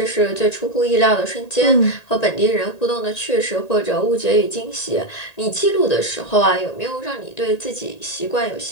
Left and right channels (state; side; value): late; right; 1.9 ms